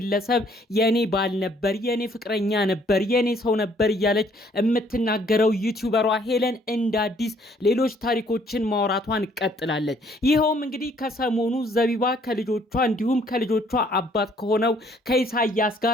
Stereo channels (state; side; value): normal; both; correlation 0.63